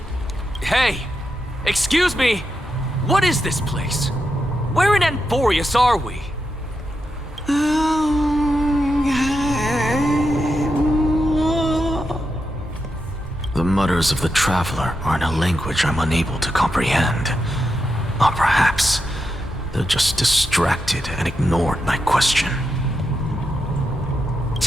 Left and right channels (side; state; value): both; normal; correlation 0.86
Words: Hey! Excuse me! What is this place? Where in Anforius are we? The mutters of the traveler are in a language I'm unable to comprehend. Or perhaps they're just distracted and ignored my question.